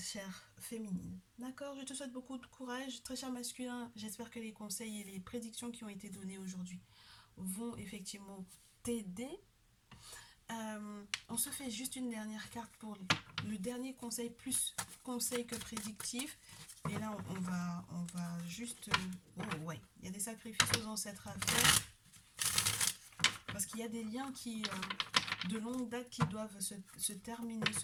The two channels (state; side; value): identical; both; correlation 1.00